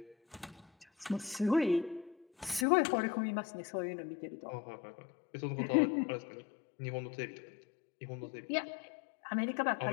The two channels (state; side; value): drops out; right; at 2.7 s